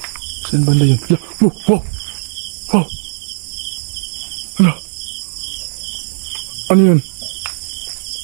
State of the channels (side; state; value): left; silent; 65 dB below the other